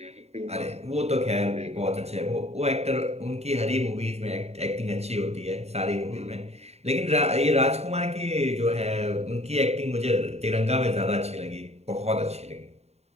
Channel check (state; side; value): late; left; 0.31 ms